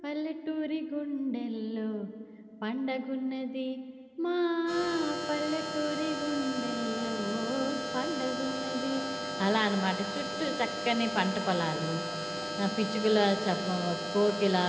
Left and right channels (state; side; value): identical; both; correlation 1.00